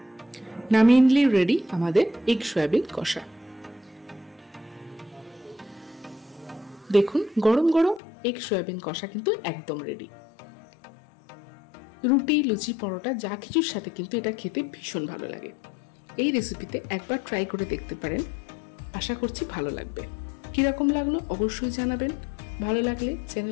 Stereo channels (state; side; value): drops out; right; at 8.0 s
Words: নামিয়ে নিলেই রেডি আমাদের এগ সয়াবিন কষা। দেখুন গরম গরম এগ সয়াবিন কষা কিন্তু একদম রেডি। রুটি লুচি পরোটা যা কিছুর সাথে কিন্তু এটা খেতে ভীষণ ভালো লাগে। এই রেসিপিতে একবার ট্রাই করে দেখতে পারেন, আশা করছি ভালো লাগবে। কিরকম লাগলো অবশ্যই জানাবেন। ভালো লাগলে